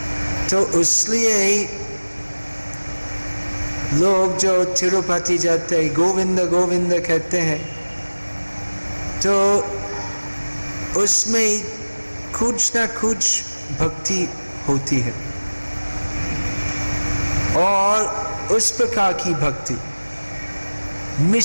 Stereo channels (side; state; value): both; inverted; correlation -1.00